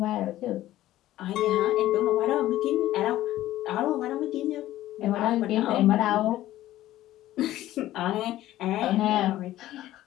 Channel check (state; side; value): quieter; right; 14.5 dB